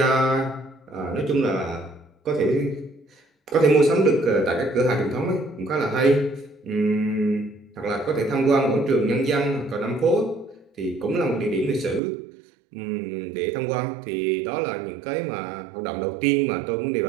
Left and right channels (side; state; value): left; drops out; at 12.0 s